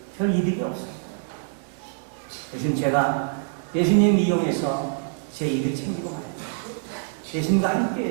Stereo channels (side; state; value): left; silent; digital silence